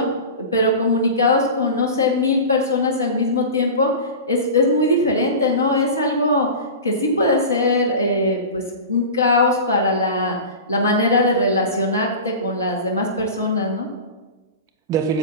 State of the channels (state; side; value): inverted; both; correlation -0.31